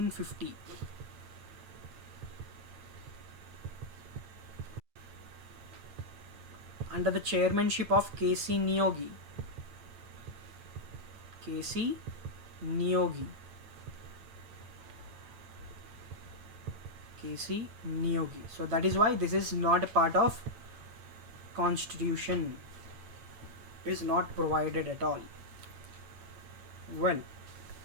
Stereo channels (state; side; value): late; left; 8.9 ms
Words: Under the chairmanship of K.C. Niyogi. K.C. Niyogi. K.C. Niyogi. So that is why this is not a part of constitution. It is not provided at all. Well,